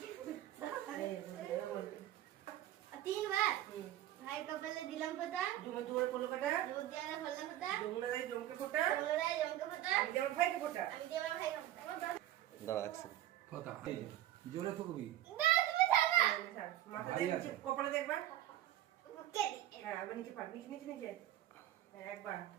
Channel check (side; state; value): left; quieter; 13.4 dB